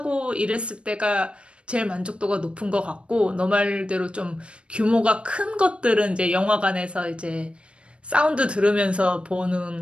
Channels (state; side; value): late; left; 0.058 ms